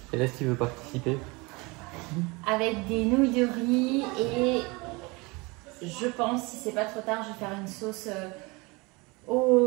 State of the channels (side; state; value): left; quieter; 26.0 dB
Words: Et là, qui veut participer? Avec des nouilles de riz et je pense, si c'est pas trop tard, je vais faire une sauce